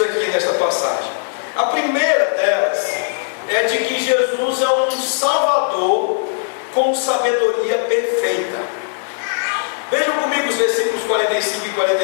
aqui nessa passagem. A primeira delas é de que Jesus é um Salvador com sabedoria perfeita. Vejam comigo os versículos 45 e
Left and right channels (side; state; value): right; silent; digital silence